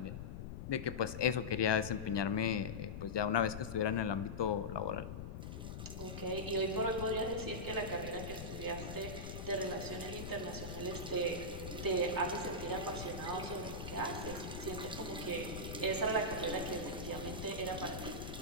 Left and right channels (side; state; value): left; noise; rumble, 7 dB below the sound